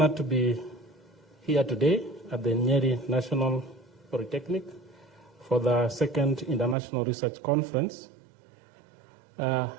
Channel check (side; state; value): left; drops out; at 6.8 s